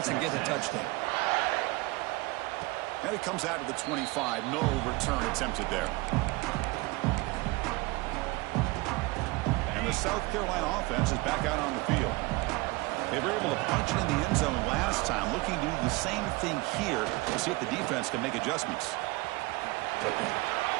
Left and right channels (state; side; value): quieter; left; 23.2 dB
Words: and get a touchdown. And it comes out to the 25. No return attempted there. And the South Carolina offense is back out on the field. They were able to punch it in the end zone last time, looking to do the same thing here to see if the defense can make adjustments.